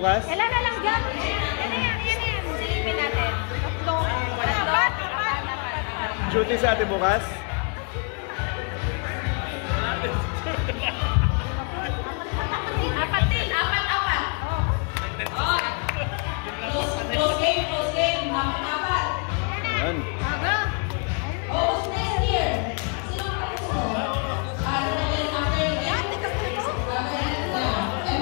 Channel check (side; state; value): right; quieter; 39.4 dB